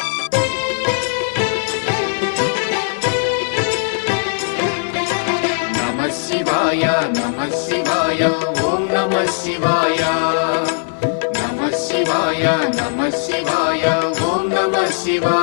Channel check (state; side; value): silent; right; 57 dB below the other